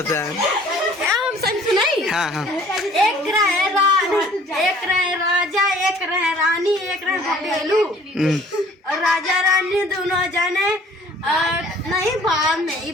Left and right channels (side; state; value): both; normal; correlation 0.53